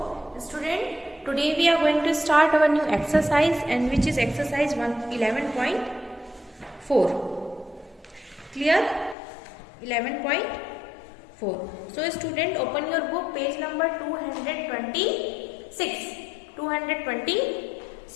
student, today we are going to start our new exercise, and which is exercise 11.4. Clear? 11.4. So student, open your book, page number 226.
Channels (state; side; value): drops out; right; at 9.2 s